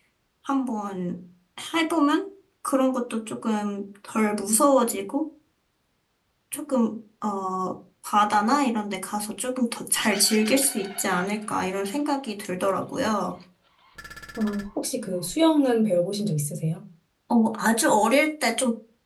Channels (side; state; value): both; identical; correlation 1.00